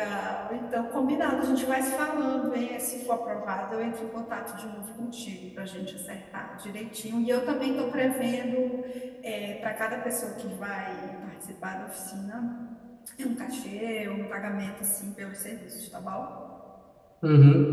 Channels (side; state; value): both; identical; correlation 1.00